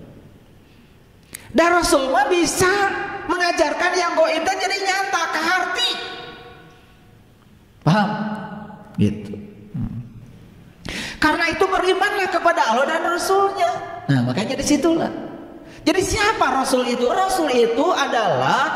Dan Rasul mah bisa mengajarkan yang gaib dan jadi nyata ke hati. Paham? Gitu. Karena itu berimanlah kepada Allah dan Rasulnya. Nah, makanya disitulah. Jadi siapa Rasul itu? Rasul itu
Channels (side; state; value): both; identical; correlation 1.00